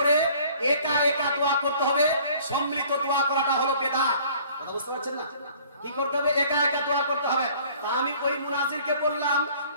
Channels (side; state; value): both; inverted; correlation -0.53